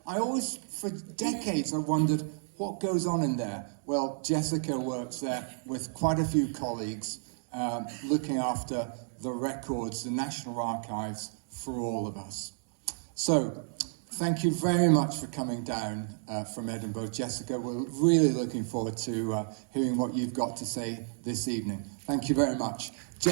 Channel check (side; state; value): left; silent; digital silence